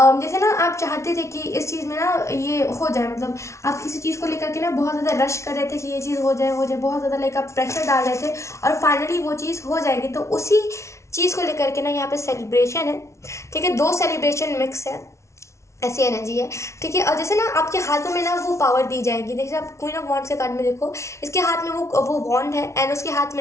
जैसे ना आप चाहते थे कि इस चीज़ में ना ये हो जाए, मतलब आप किसी चीज़ को लेकर के ना बहुत ज़्यादा रश कर रहे थे कि ये चीज़ हो जाए, बहुत ज़्यादा लाइक आप प्रेशर डाल रहे थे, और फाइनली वो चीज़ हो जाएगी. तो उसी चीज़ को लेकर के ना यहाँ पे सेलिब्रेशन है. ठीक है, दो सेलिब्रेशन मिक्स है, ऐसी एनर्जी है. ठीक है, और जैसे ना आपके हाथों में ना वो पावर दी जाएगी. देखिए आप क्वीन ऑफ वॉन्ड्स के कार्ड में देखो, इसके हाथ में वो वॉन्ड है, एंड उसके हाथ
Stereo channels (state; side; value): late; right; 0.13 ms